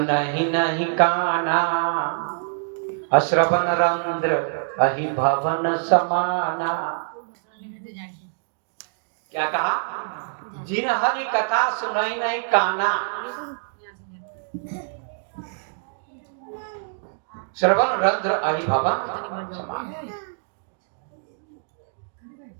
नहीं काना, अश्रवण रंध्र अहि भवन समाना। क्या कहा? जिन हरि कथा सुनहि नहीं काना, श्रवण रंध्र अहि भवन समाना।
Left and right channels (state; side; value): silent; left; digital silence